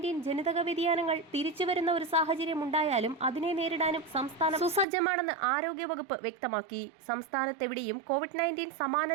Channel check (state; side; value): drops out; left; at 4.9 s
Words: ജനിതക വ്യതിയാനങ്ങൾ തിരിച്ചുവരുന്ന ഒരു സാഹചര്യം ഉണ്ടായാലും അതിനെ നേരിടാനും സംസ്ഥാനം സുസജ്ജമാണെന്ന് ആരോഗ്യവകുപ്പ് വ്യക്തമാക്കി. സംസ്ഥാനത്തെവിടെയും COVID-19 സമാന